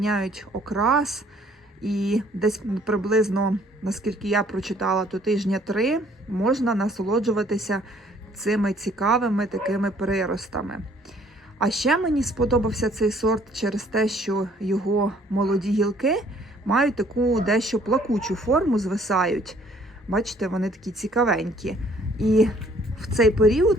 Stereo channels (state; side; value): normal; both; correlation 0.60